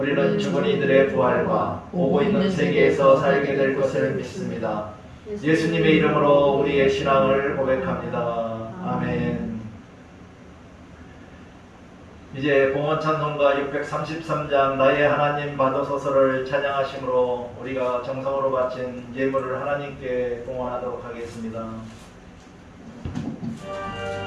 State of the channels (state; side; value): identical; both; correlation 1.00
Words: 죽은 이들의 부활과 오고 있는 세계에서 살게 될 것을 믿습니다. 예수님의 이름으로 우리의 신앙을 고백합니다. 아멘. 이제 봉헌 찬송가 633장 나의 하나님 받으소서를 찬양하심으로 우리가 정성으로 바친 예물을 하나님께 봉헌하도록 하겠습니다.